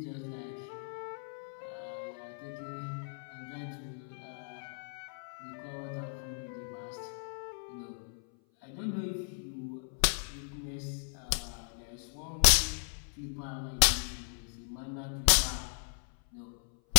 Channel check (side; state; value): right; silent; 53 dB below the other